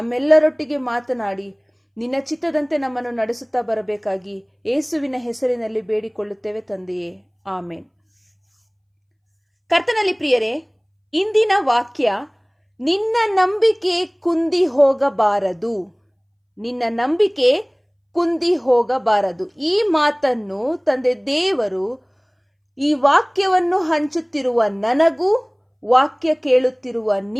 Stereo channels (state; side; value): identical; both; correlation 1.00